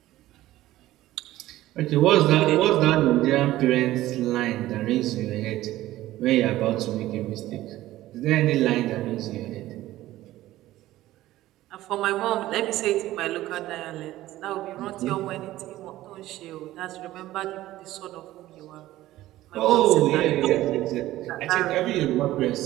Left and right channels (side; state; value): left; quieter; 15.5 dB